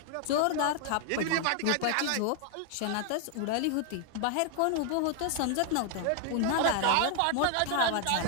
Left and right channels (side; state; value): both; different; correlation 0.00